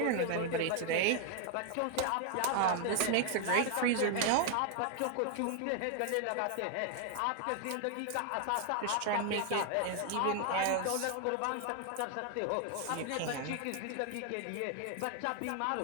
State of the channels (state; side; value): different; both; correlation 0.00